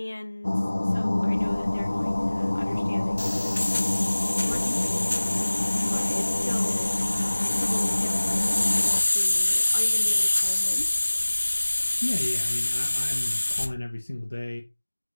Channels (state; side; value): inverted; both; correlation -1.00